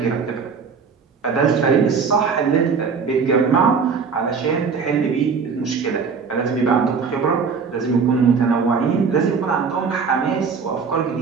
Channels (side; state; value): left; quieter; 5.6 dB